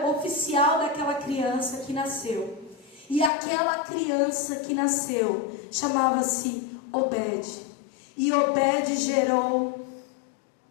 oficial daquela criança que nasceu. E aquela criança que nasceu chamava-se Obed. E Obed gerou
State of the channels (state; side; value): drops out; right; at 3.3 s